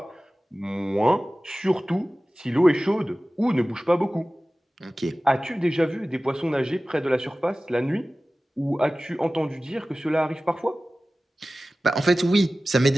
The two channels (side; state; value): both; normal; correlation 0.96